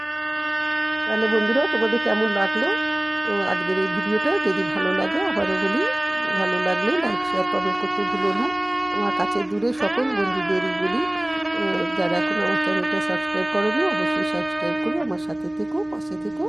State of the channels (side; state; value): left; noise; hum, 27 dB below the sound